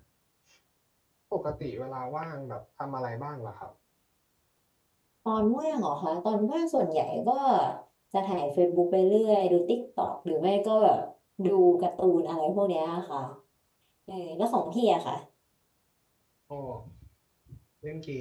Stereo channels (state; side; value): identical; both; correlation 1.00